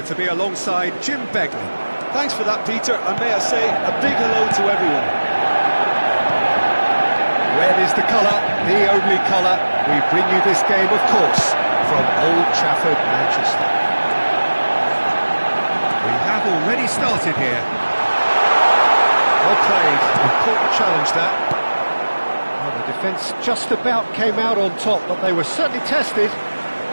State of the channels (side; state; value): both; inverted; correlation -1.00